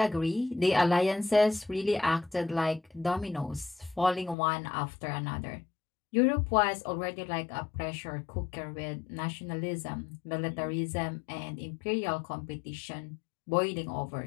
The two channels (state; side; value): drops out; right; at 4.4 s